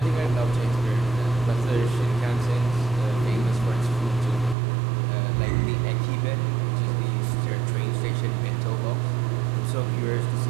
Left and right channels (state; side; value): drops out; left; at 4.5 s